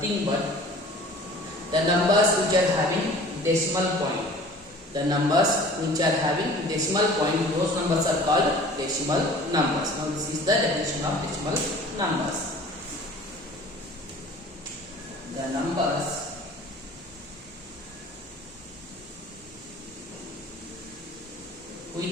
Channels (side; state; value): both; normal; correlation 0.46